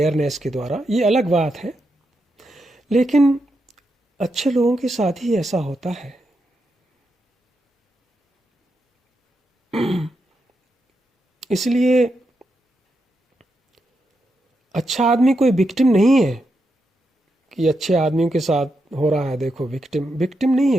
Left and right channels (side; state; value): both; normal; correlation 0.84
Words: के द्वारा, ये अलग बात है। लेकिन अच्छे लोगों के साथ ही ऐसा होता है। इसलिए अच्छा आदमी कोई विक्टिम नहीं है कि अच्छे आदमियों के साथ हो रहा है देखो विक्टिम। विक्टिम नहीं